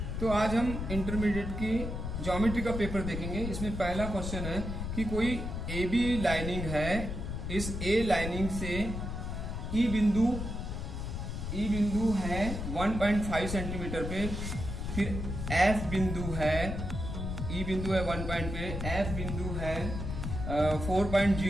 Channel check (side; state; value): left; noise; rumble, 4 dB below the sound